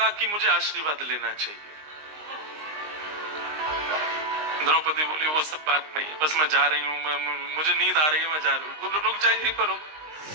कि मुझे आशीर्वाद लेना चाहिए? द्रौपदी बोली, वो सब बात नहीं, बस मैं जा रही हूँ, मुझे नींद आ रही है, मैं जा रही हूँ। रुक जा, यहीं पर रुक।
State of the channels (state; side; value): late; left; 19 ms